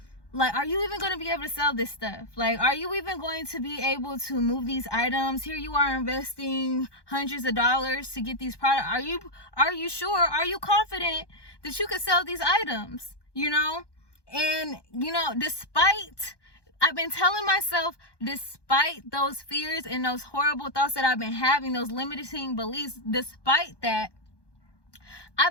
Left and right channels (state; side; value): late; right; 1.2 ms